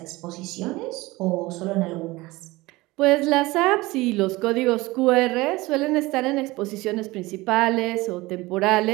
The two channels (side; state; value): left; quieter; 20.8 dB